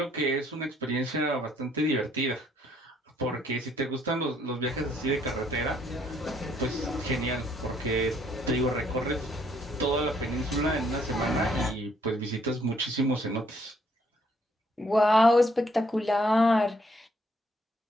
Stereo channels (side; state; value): both; normal; correlation 0.68